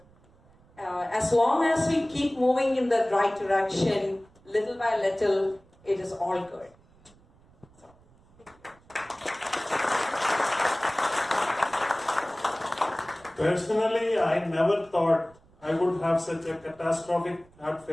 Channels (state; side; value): noise; right; rumble, 29 dB below the sound